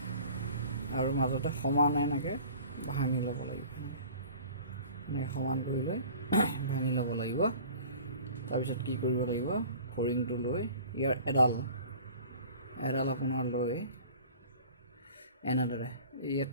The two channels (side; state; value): both; inverted; correlation -0.45